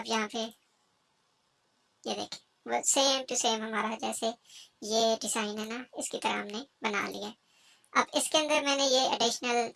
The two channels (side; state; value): both; identical; correlation 1.00